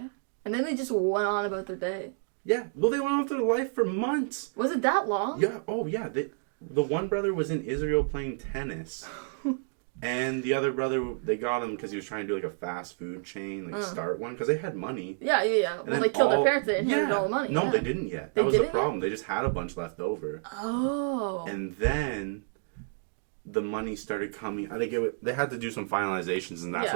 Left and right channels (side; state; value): left; silent; 58 dB below the other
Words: Yeah. And then they just went on about their day. Yeah. Well, they went on with their life for months. Was it that long? Yeah. Oh, yeah. The one brother was in Israel playing tennis. And the other brother, they got him because he was trying to do like a fast food chain, like start one, because they had money. Yeah. And then they killed their parents, they inherited all the money. No, they didn't yet. That was the problem. They just had a bunch left over. Oh. And then the money started coming. I think they had to do some finalizations, and that's